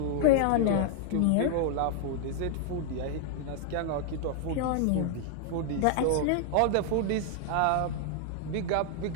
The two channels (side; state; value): both; different; correlation 0.00